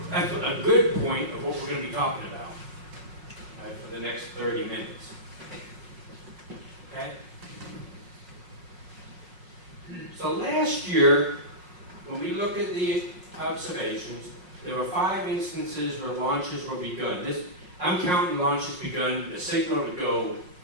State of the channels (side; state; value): left; late; 5.5 ms